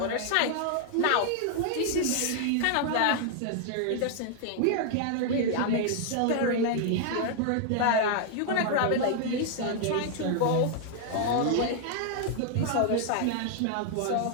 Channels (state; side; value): different; both; correlation 0.00